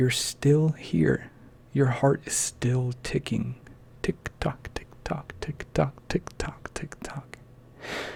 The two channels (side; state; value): both; identical; correlation 1.00